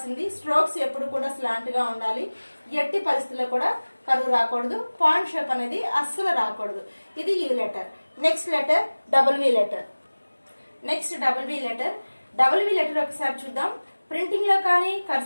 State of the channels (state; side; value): inverted; both; correlation -1.00